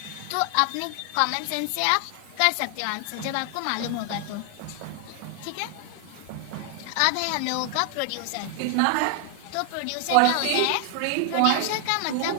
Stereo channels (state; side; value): different; both; correlation 0.00